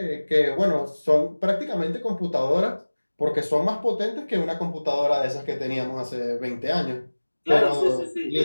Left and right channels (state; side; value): inverted; both; correlation -1.00